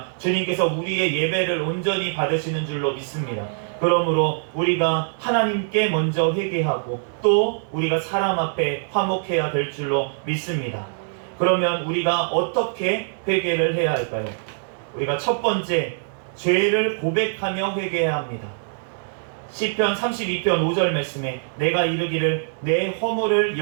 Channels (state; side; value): silent; left; 63 dB below the other